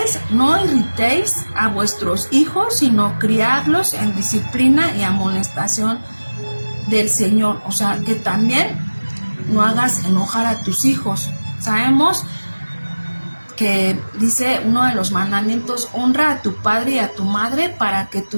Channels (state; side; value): inverted; both; correlation -1.00